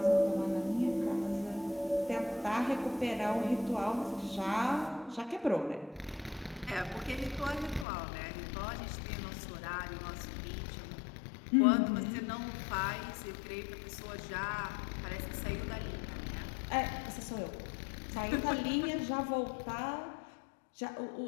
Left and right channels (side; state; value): right; drops out; at 7.9 s